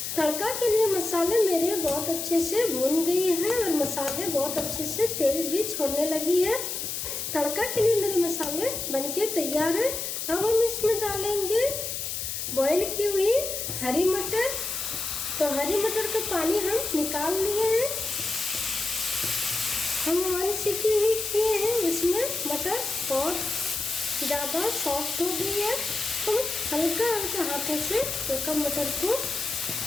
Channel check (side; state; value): left; noise; hiss, 4 dB below the sound